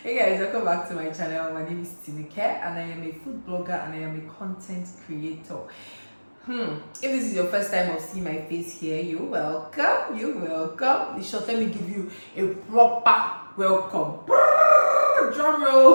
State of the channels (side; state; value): both; inverted; correlation -1.00